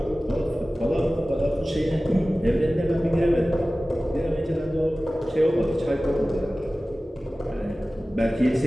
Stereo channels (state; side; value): normal; both; correlation 0.97